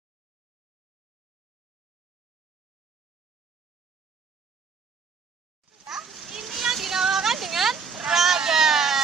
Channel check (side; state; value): left; quieter; 5.4 dB